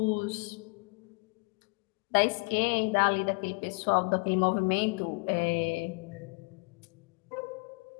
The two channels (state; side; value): quieter; right; 31.7 dB